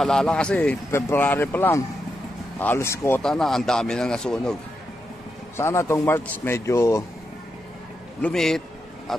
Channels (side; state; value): both; normal; correlation 0.85